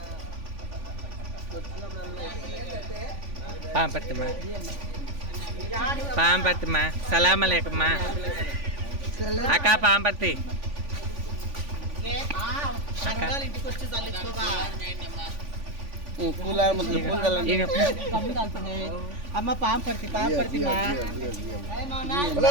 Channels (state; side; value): late; left; 3.5 ms